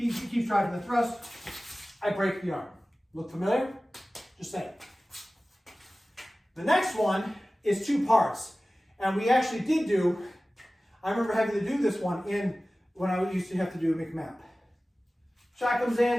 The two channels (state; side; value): normal; both; correlation 0.97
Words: keeps driving the thrust, I break the arm. Look familiar? Just saying. The next one is 2 parts. And we actually did do, I remember having to do this one when I used to have to do a McMap. Shot comes